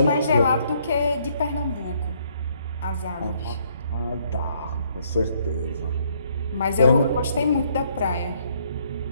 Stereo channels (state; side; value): inverted; both; correlation -0.68